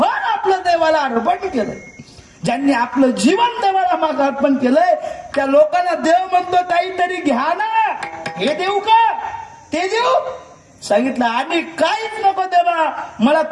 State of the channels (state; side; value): identical; both; correlation 1.00